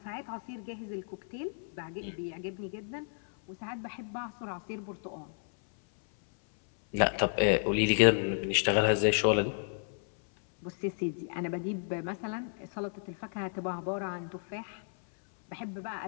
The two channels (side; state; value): right; silent; 56 dB below the other